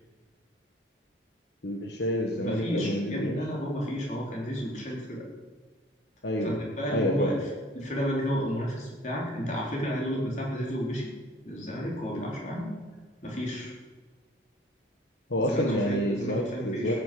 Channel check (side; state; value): both; normal; correlation 0.51